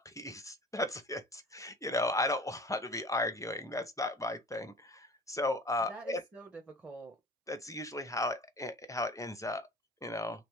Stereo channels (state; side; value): normal; both; correlation 0.42